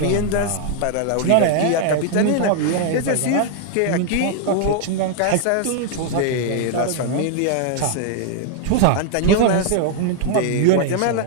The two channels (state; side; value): different; both; correlation 0.00